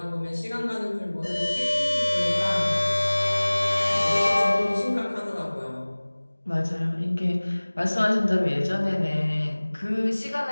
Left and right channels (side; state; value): both; inverted; correlation -1.00